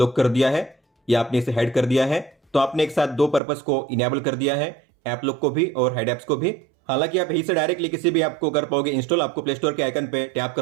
कर दिया है या आपने इसे हाइड कर दिया है। तो आपने एक साथ दो पर्पस को इनेबल कर दिया है, ऐप लॉक को भी और हाइड एप्स को भी। हालांकि आप यहीं से डायरेक्टली किसी भी ऐप को कर पाओगे इंस्टॉल। आपको प्ले स्टोर के आइकन पे टैप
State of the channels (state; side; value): drops out; left; at 3.4 s